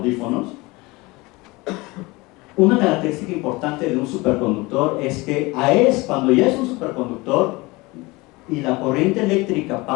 Una característica importante de un superconductor es que cuando ya es un superconductor y la corriente eléctrica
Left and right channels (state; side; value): quieter; right; 23.2 dB